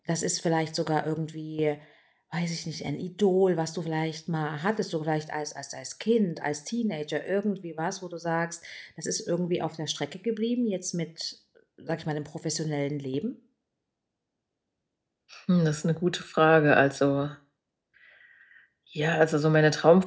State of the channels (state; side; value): identical; both; correlation 1.00